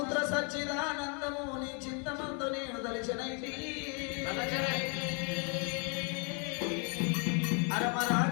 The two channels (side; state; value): right; quieter; 35.5 dB